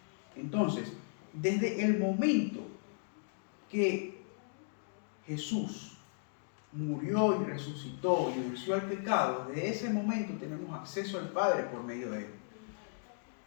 Entonces, desde el momento que Jesús murió y resucitó y venció al pecado, desde ese momento tenemos acceso al Padre por medio de Él.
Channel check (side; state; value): right; silent; digital silence